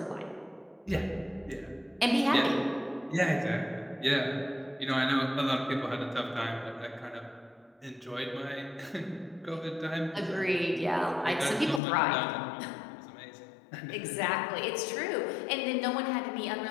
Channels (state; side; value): drops out; right; at 11.8 s